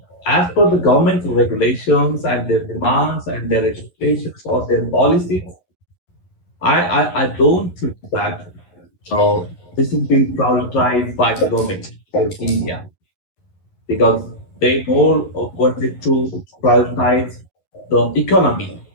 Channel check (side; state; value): right; late; 11 ms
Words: as per the government regulations and their demands and their expectations or their policies, I don't think that this is being prioritized by the government of India, because they more wanted to prioritize the economy